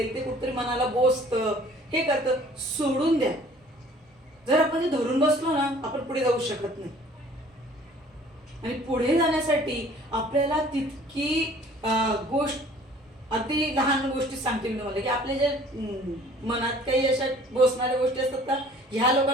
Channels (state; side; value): normal; both; correlation 0.52